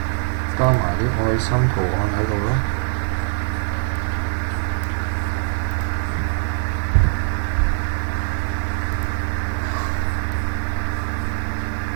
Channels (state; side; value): silent; left; 63 dB below the other